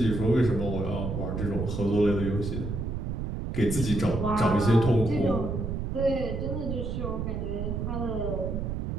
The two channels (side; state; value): right; noise; rumble, 3 dB below the sound